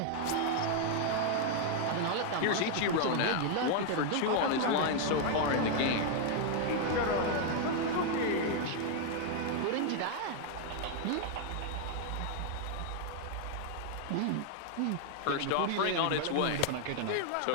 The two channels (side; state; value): both; different; correlation 0.00